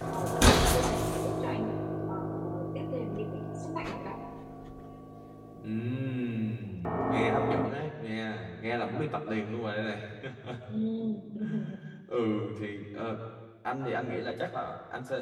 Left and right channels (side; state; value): both; identical; correlation 1.00